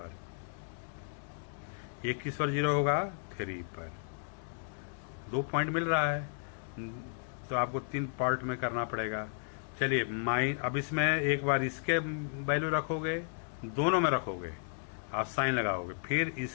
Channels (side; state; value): right; silent; digital silence